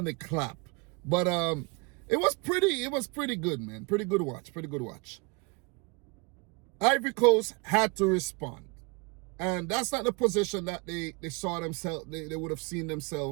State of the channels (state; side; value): quieter; left; 29.5 dB